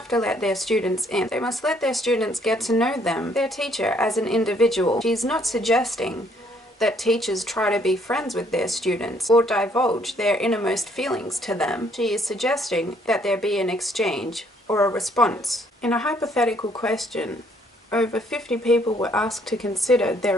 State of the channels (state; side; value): normal; both; correlation 0.66